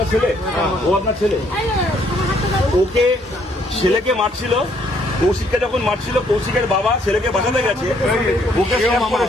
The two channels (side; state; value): both; normal; correlation 0.67